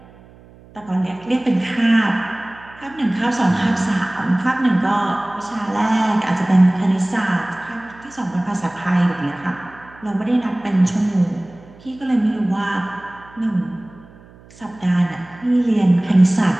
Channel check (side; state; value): right; noise; hum, 24 dB below the sound